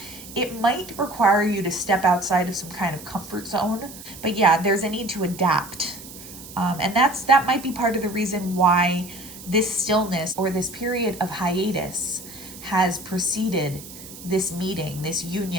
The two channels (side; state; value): right; noise; hiss, 15 dB below the sound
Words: It might require you to step outside of some kind of comfort zone. But yeah, there's a need to adapt. And that might be part of the reason why this stillness or this period of hiatus has preceded this meeting, this